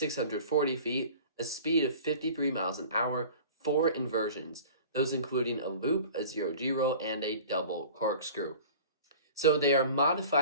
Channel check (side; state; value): both; inverted; correlation -0.42